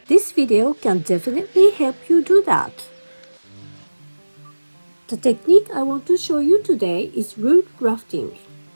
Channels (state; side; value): inverted; both; correlation -1.00